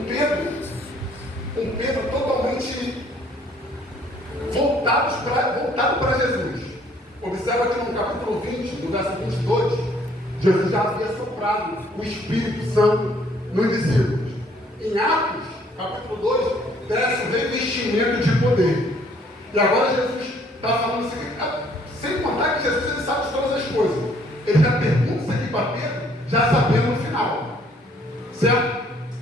Pedro totalmente voltado para Jesus. Observa que no capítulo 20, no verso 22, Jesus já havia soprado o Espírito Santo nos discípulos. Em Atos, capítulo 2, desce o revestimento de poder. E agora Jesus está falando assim, sem contar que Jesus ele sabe de todas as coisas. Ele já pergunta isso aqui para Pedro, já sabendo no final. Certo?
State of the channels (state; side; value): normal; both; correlation 0.62